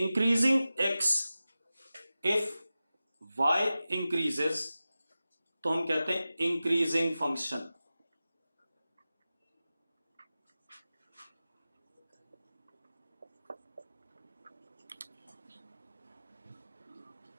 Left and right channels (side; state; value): both; inverted; correlation -0.95